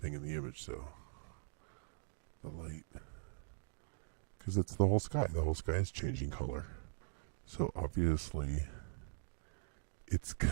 in the image, so the light, because it's the whole sky. The whole sky is changing color, so obviously it's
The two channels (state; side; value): silent; left; digital silence